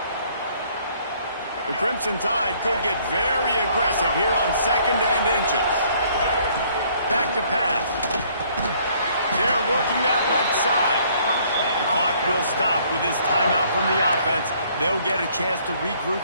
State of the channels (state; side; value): inverted; both; correlation -0.62